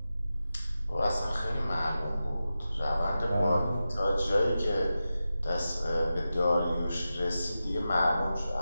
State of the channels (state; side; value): inverted; both; correlation -0.92